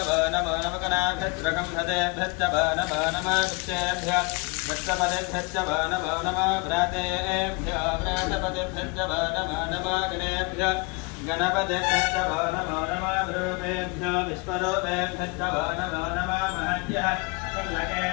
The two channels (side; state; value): right; quieter; 28.9 dB